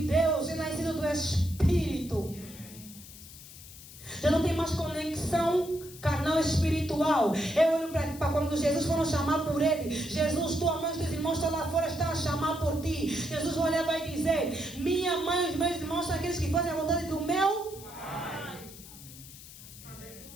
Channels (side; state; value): left; noise; hiss, 17 dB below the sound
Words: Deus, é nascido do Espírito. Já não tem mais conexão carnal espiritual. Eu olho para quando Jesus foram chamar por ele: Jesus, tua mãe e teus irmãos estão lá fora, estão a chamar por ti. Jesus vai olhar e vai dizer: minha mãe e os meus irmãos são aqueles que fazem a vontade do meu Pai.